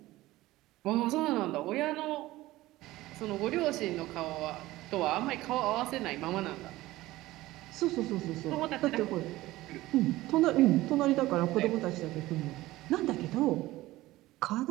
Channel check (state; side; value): quieter; left; 17.5 dB